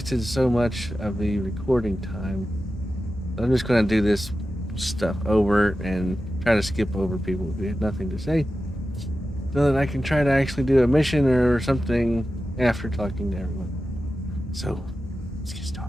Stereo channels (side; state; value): both; normal; correlation 0.93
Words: so much of the recording time. I'm just going to do this stuff over and try to skip over people who had nothing to say, so that I can try to actually do a mission or something after talking to everyone. So, let's get